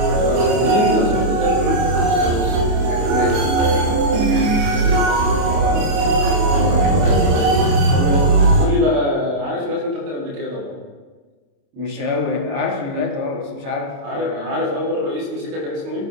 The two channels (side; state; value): left; late; 28 ms